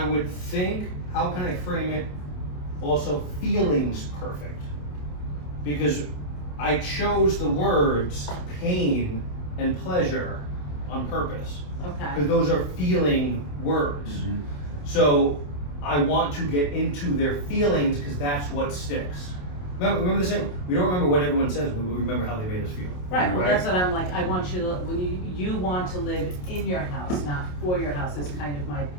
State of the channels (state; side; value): late; right; 28 ms